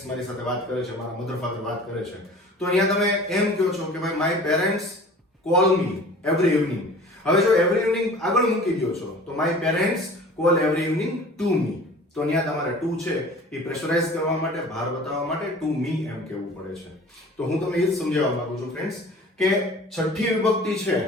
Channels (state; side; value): normal; both; correlation 0.44